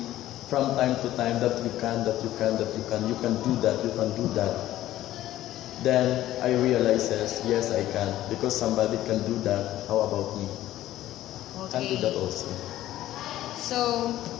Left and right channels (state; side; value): quieter; right; 14.1 dB